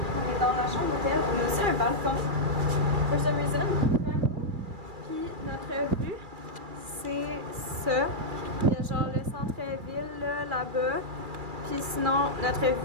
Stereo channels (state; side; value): late; left; 2.3 ms